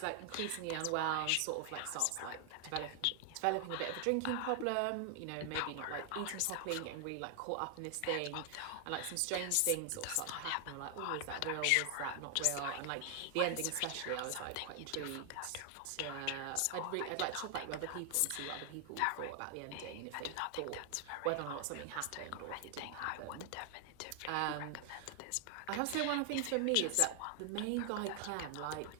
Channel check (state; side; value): different; both; correlation 0.00